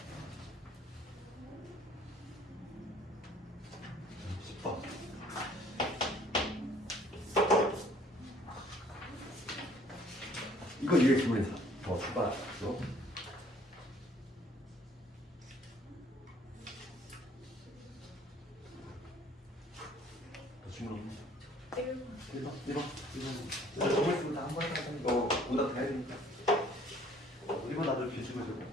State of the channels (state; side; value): normal; both; correlation 0.57